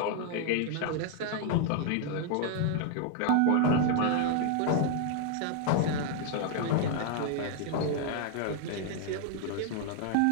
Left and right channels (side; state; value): both; different; correlation 0.00